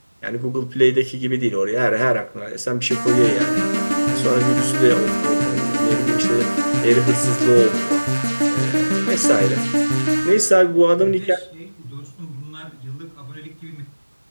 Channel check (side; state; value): both; inverted; correlation -1.00